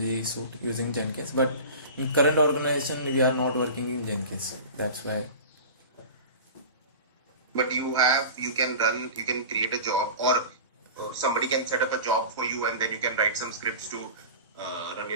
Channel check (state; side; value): inverted; both; correlation -0.35